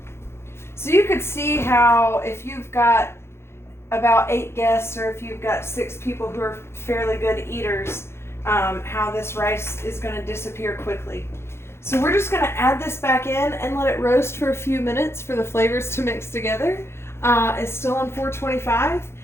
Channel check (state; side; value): late; right; 0.12 ms